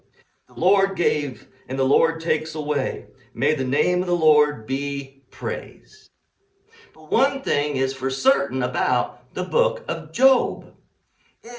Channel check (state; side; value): identical; both; correlation 1.00